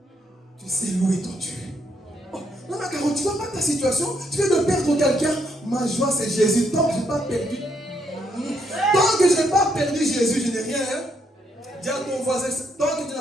tu sais louer ton Dieu. Oh, non, mais Caro, tu ne vois pas ta situation. Tu viens de perdre quelqu'un. Ma joie, c'est Jésus. Tant que je n'ai pas perdu. Tant que je n'ai pas perdu Jésus, je n'ai rien. Hein? Dis à ton voisin, tant que tu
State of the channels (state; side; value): normal; both; correlation 0.74